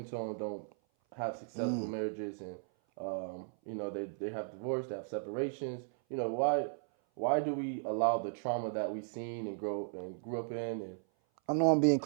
tone don't have successful Mm. marriages, and they have divorce, they have separations? Why do we allow the trauma that we seen and grew up in? And I know I'm being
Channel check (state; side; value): silent; left; 54 dB below the other